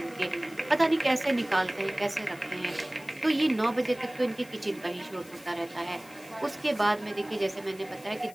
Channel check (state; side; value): noise; left; hiss, 22 dB below the sound